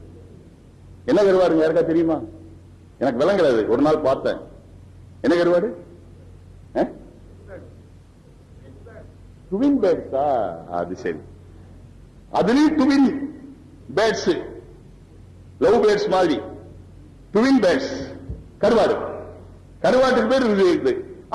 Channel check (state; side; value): identical; both; correlation 1.00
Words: என்ன கருவாடுங்க? யாருக்கா தெரியுமா? எனக்கு விளங்குறது. ஒரு நாள் பார்த்தேன். என்ன கருவாடு? ட்வின் பேர்ட்ஸா? அது சரி. அதுலயும் ட்வின் பேர்ட்ஸ், லவ் பேர்ட்ஸ் மாதிரி ட்வின் பேர்ட்ஸ், கருவாடு. கருவாட்டுக்கு பேர் இருக்குது.